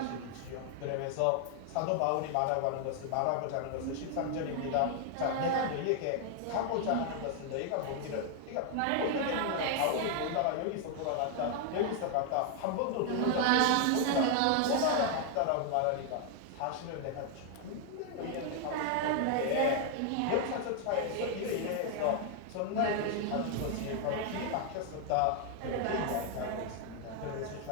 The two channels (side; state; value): both; different; correlation 0.00